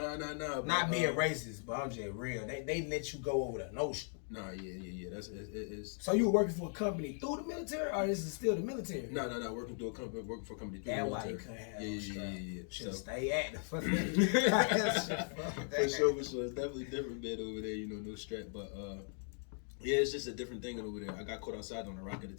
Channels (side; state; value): right; silent; 52 dB below the other